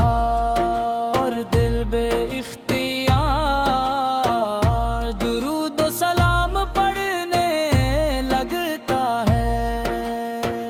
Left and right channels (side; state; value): both; identical; correlation 1.00